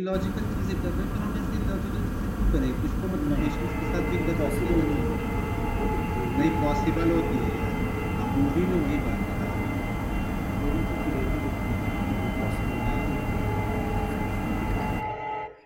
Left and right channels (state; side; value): identical; both; correlation 1.00